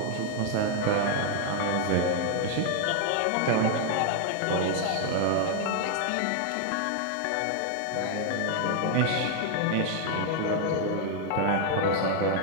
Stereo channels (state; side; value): different; both; correlation 0.00